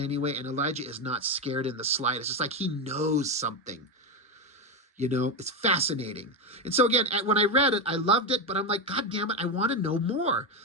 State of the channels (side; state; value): both; normal; correlation 0.11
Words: And Elijah is not scared in the slightest. It's like he knows something. You know, it's fascinating. And so again, when I read it, I loved it, but I'm like, God damn it, I want to know more.